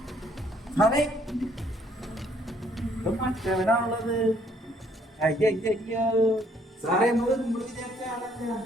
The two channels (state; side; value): normal; both; correlation 0.65